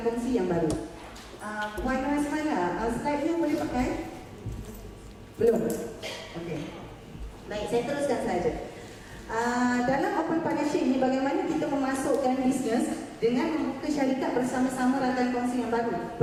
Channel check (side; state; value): both; identical; correlation 1.00